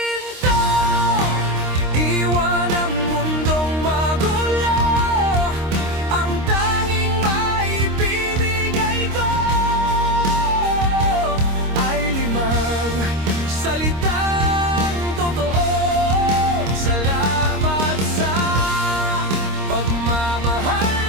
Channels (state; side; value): late; left; 26 ms